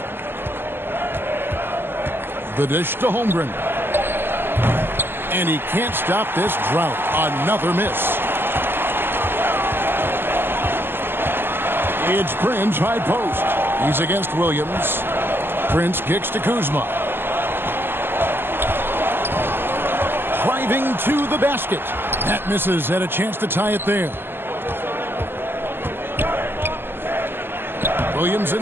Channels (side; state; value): left; late; 0.10 ms